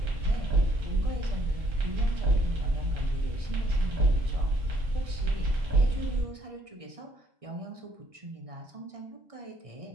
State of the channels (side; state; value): left; late; 1.6 ms